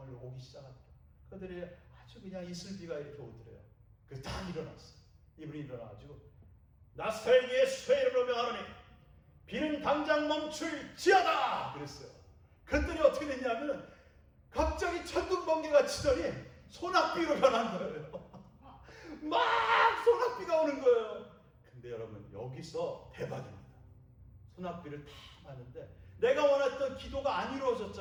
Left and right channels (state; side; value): identical; both; correlation 1.00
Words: 오기 시작하더라고요. 그들이 아주 그냥 이슬비가 이렇게 오더래요. 그래서 딱 일어났어요. 이분이 일어나가지고 나사렛 예수의 이름으로 명하노니 비는 당장 멈출지어다 그랬어요. 그랬더니 어떻게 됐냐면 갑자기 천둥번개가 치더니 소낙비로 변한 거예요. 막 소낙비가 오는 거예요. 근데 여러분 여기서 대박입니다. 소낙비를 다 맞는데 내가 원했던 기도가 안